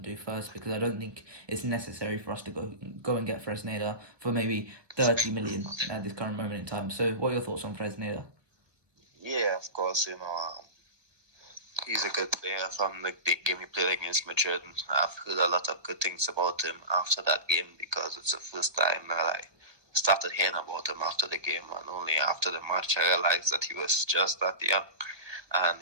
do first, because I don't think it's necessary for us to go and get Fresneda for maybe 30 million at this current moment in time. So, what are your thoughts on Fresneda? Yeah, of course, he's a good player from the big game he played against Madrid. I've heard a lot of good things about him after that game, because it's the first time that I started hearing about him after the game, and only after the match I realized that he was just that young. And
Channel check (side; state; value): left; late; 1.4 ms